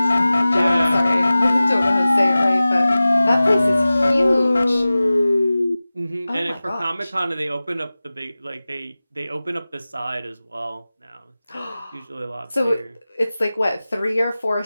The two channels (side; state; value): both; inverted; correlation -0.97